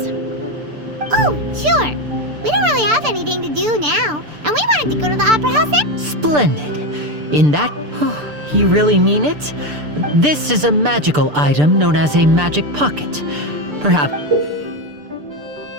Oh, sure. We don't really have anything to do now, and we wanted to go to the opera house. Splendid. In that... you really mean it? This is a magical item known as a magic pocket. Perhaps...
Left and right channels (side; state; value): left; late; 6.8 ms